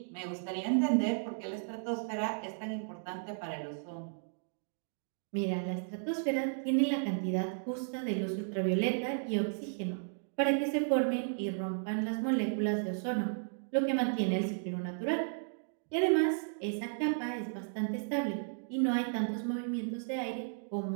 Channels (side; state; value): left; silent; digital silence